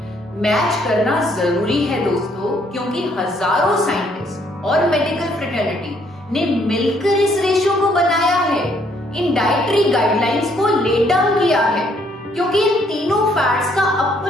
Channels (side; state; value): both; normal; correlation 0.67